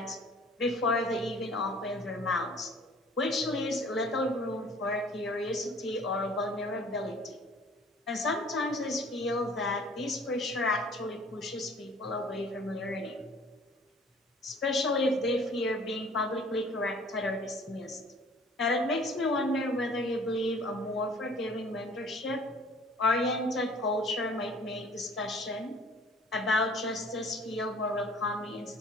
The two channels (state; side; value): normal; both; correlation 0.51